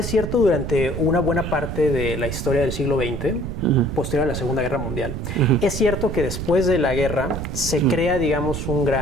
cierto durante una buena parte de la historia del siglo XX, posterior a la Segunda Guerra Mundial. Es cierto que después de la guerra se crea, digamos, un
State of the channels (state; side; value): noise; right; rumble, 5 dB below the sound